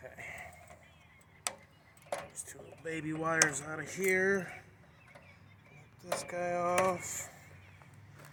These two little baby wires out of here. Get this guy off.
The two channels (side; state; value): both; identical; correlation 1.00